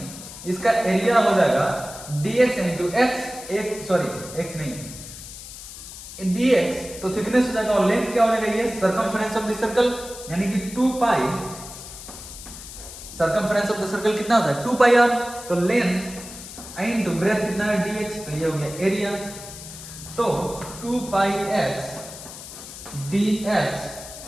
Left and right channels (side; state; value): left; noise; hiss, 13 dB below the sound